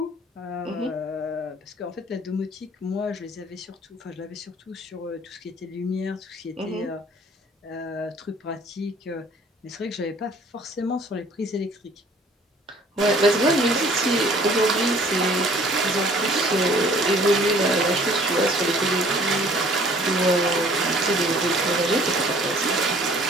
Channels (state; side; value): normal; both; correlation 0.54